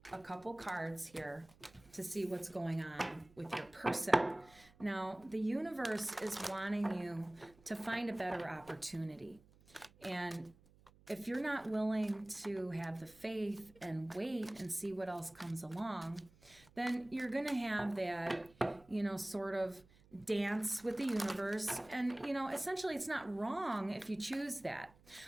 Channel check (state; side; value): noise; right; hum, 27 dB below the sound